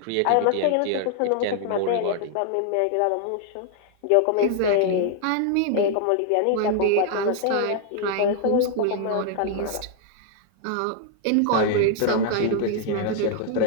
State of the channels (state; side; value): different; both; correlation -0.01